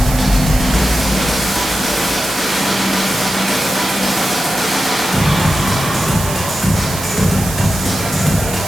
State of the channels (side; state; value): right; noise; hiss, 8 dB below the sound